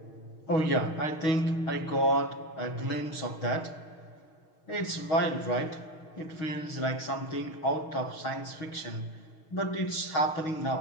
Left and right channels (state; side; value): late; right; 6.4 ms